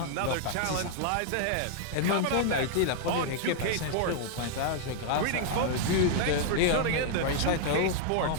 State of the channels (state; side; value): different; both; correlation -0.01